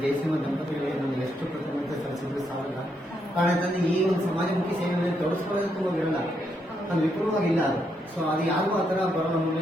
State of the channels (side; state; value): both; normal; correlation 0.78